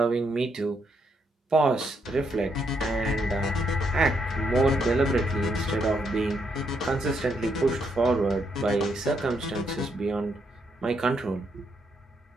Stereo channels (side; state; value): both; normal; correlation 0.76